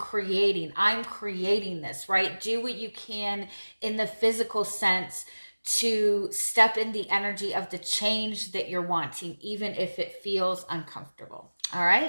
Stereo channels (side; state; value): both; inverted; correlation -1.00